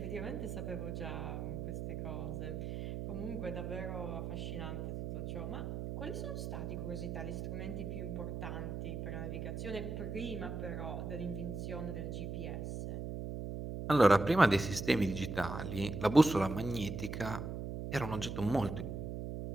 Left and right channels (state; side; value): noise; right; hum, 4 dB below the sound